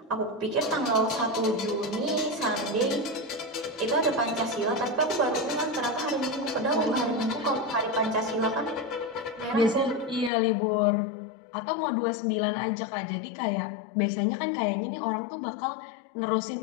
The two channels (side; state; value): right; drops out; at 10.3 s